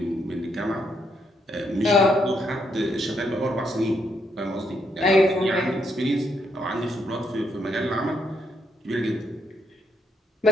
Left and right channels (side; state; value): both; normal; correlation 0.76